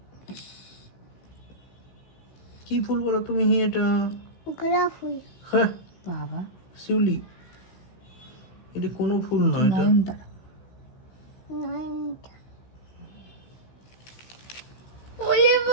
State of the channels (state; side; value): late; right; 16 ms